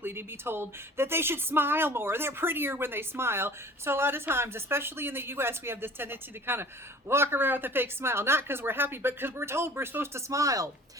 to be told that they should smile more. They're prettier when they smile. So a lot of times, especially in the US, we have this tendency to kind of walk around with a fake smile, not because we're happy, but because we're told we're supposed to smile.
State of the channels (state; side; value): normal; both; correlation 0.46